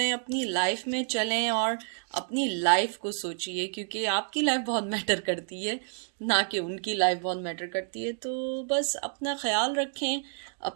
अपनी लाइफ में चलें और अपनी लाइफ को सोचिए, क्योंकि आपकी लाइफ बहुत मैटर करती है, ना कि उनकी लाइफ बहुत मैटर करती है। तो बस अपना ख्याल रखें,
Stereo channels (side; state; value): left; silent; 58 dB below the other